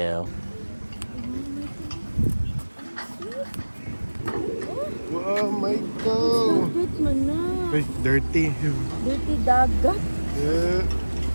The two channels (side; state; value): both; inverted; correlation -1.00